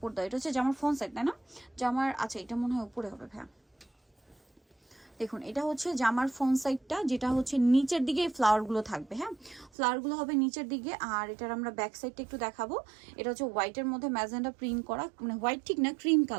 দেয়। এটা হচ্ছে জামার ফ্রন্ট সাইড, তাই না? জামার আচ্ছা, এটা মনে হয় উপরে হবে ভাইয়া। দেখুন, এটা হচ্ছে জামার ফ্রন্ট সাইডটা, যেটা হচ্ছে নিচের দিকে ফ্লাওয়ারগুলো থাকবে। হ্যাঁ, ফ্লাওয়ারগুলো হবে নিচের দিকে। আর এটার আমরা ব্যাক সাইডটা একটু দেখাবো। এটা হচ্ছে হোয়াইটের মধ্যে ম্যাজেন্ডা প্রিন্ট করা, মানে হোয়াইট ঠিক না, ক্রিম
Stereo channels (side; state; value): left; drops out; at 9.7 s